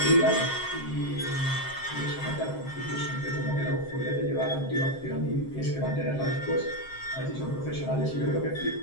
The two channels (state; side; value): late; right; 7.5 ms